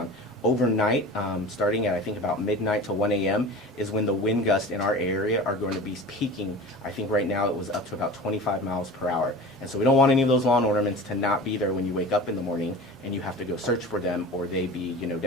Overnight, starting at I think about midnight to 1 a.m. is when the wind gusts in our area are going to be peaking. I think right now it was up to about 25 miles per hour. And so we don't want any of those lawn ornaments to not be there when you wake up in the morning and you have to go search for them, or they be,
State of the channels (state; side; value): normal; both; correlation 0.35